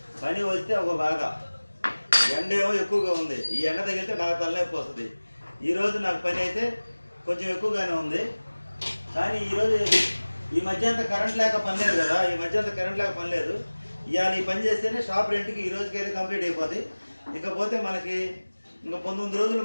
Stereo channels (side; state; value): both; inverted; correlation -1.00